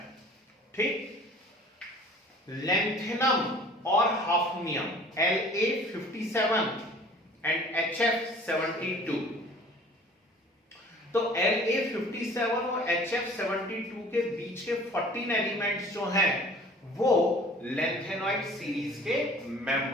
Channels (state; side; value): normal; both; correlation 0.49